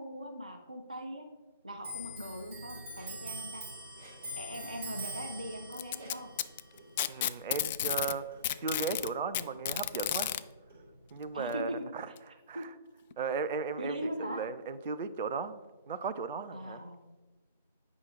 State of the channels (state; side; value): inverted; both; correlation -0.36